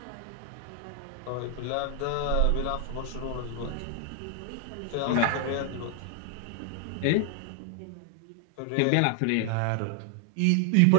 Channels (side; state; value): both; different; correlation 0.00